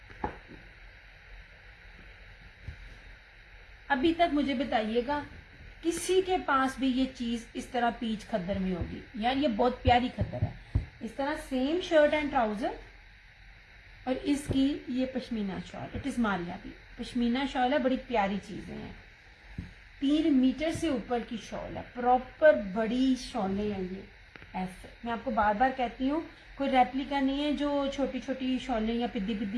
अभी तक मुझे बताइएगा किसी के पास भी ये चीज इस तरह पीच खद्दर में होगी? यार ये बहुत प्यारी खद्दर है, इस तरह सेम शर्ट एंड ट्राउजर, और इसकी ये pashmina shawl, it is Maria भी पश्मीना शॉल है, बड़ी प्यारी चीजें हैं। 3 मीटर से ऊपर की शॉल है, प्रॉपर बड़ी शॉलें हैं ये। ऐसे मैं आपको बार बार कहती हूँ, कोई रेप्लिका नहीं है जो छोटी छोटी शॉलें या पिद्दी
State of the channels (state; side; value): identical; both; correlation 1.00